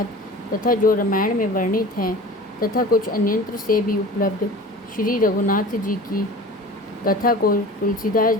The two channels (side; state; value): both; normal; correlation 0.39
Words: तथा जो रामायण में वर्णित हैं तथा कुछ अन्यंत्र से भी उपलब्ध श्री रघुनाथ जी की कथा को तुलसीदास